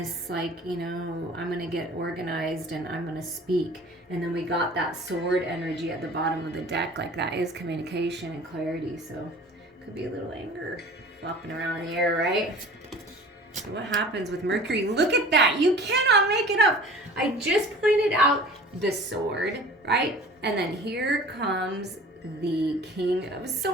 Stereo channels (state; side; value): normal; both; correlation 0.44